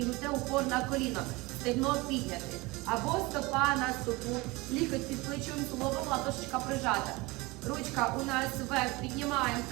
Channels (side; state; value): left; quieter; 23.3 dB